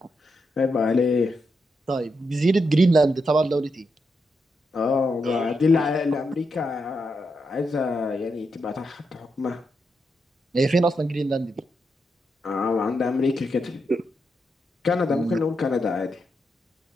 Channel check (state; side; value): normal; both; correlation 0.83